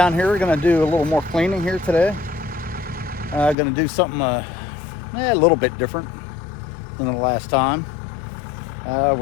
here, we're going to do a little more cleaning here today. Going to do something a little bit different than the last time.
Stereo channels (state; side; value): drops out; right; at 3.6 s